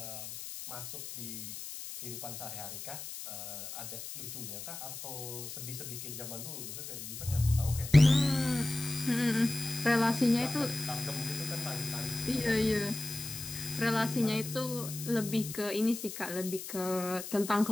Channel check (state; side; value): noise; left; hiss, 9 dB below the sound